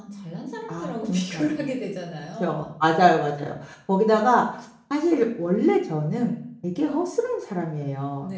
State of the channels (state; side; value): identical; both; correlation 1.00